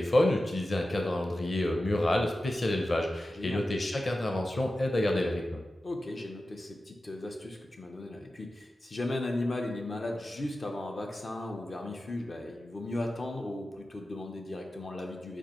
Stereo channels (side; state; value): both; normal; correlation 0.93